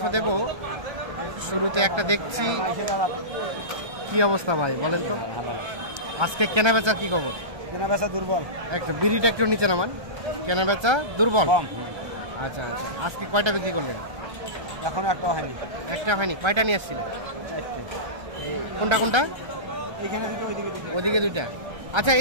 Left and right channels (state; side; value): late; left; 1.3 ms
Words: দেব। শুরুতে একটা দেখছি, কি অবস্থা ভাই বলেন তো? আজকে কেনা বেচার কি খবর? কেনা বেচা দুর্বল, একটা বিড়িটা একটু নিচে নামান। কেনা বেচা দুর্বল। আচ্ছা আচ্ছা, আজকে কয়টা বিক্রি করলেন? এখনো একটা হয়নি। একটা হয়নি? কয়টা নিয়ে আসছিলেন? কোনটা কোনটা? ওদিকে 2টা। আচ্ছা,